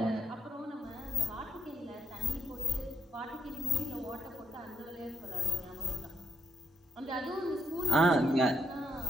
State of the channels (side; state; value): both; normal; correlation 0.77